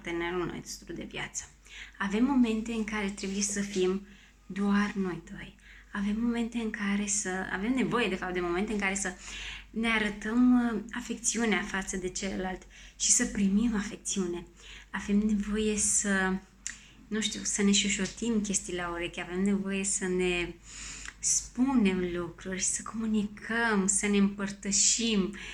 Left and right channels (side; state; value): both; identical; correlation 1.00